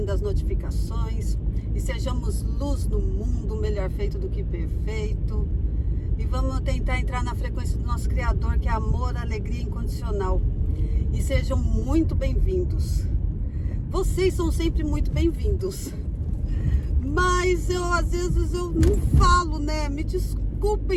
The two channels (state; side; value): identical; both; correlation 1.00